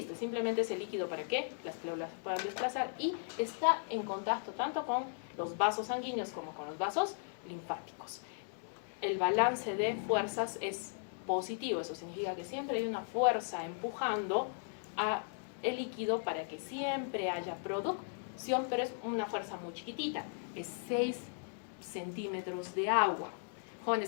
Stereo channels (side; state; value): right; silent; digital silence